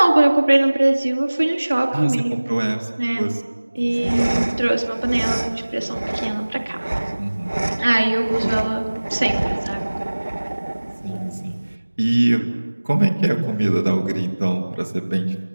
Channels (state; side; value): inverted; both; correlation -1.00